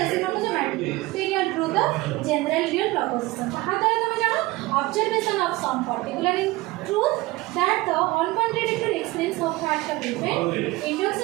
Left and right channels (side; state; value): left; quieter; 20.3 dB